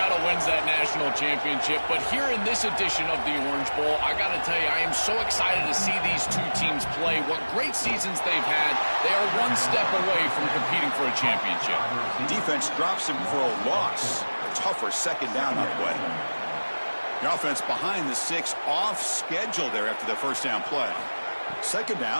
wins that national championship. But here in this edition of the Orange Bowl, I got to tell you, I am so excited to see these two teams play. What great seasons they've had. They are one step away from competing for a championship. The defense drops him for a loss. Tougher second down on the way. The offense behind the 6, off schedule there after the first down play. Second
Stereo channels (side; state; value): both; inverted; correlation -1.00